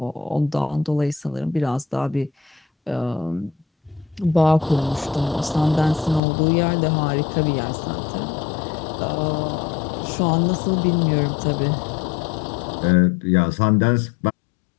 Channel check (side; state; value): right; drops out; at 6.2 s